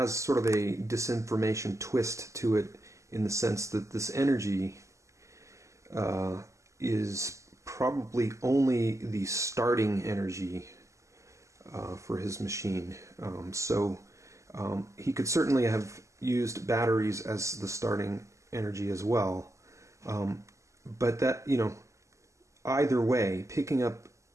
sort of a disinformation twist to it, in the sense that this energy is probably only the starting energy for his machine. So he could certainly have used batteries as the starting energy as well. But that, either way, picking up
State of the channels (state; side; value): late; left; 0.15 ms